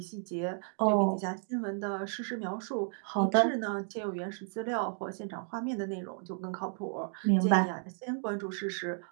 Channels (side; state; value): left; silent; 56 dB below the other